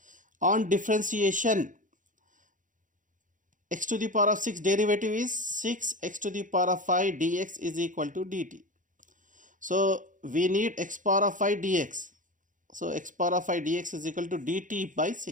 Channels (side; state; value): left; late; 0.38 ms